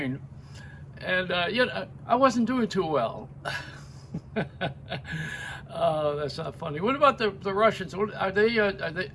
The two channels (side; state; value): both; identical; correlation 1.00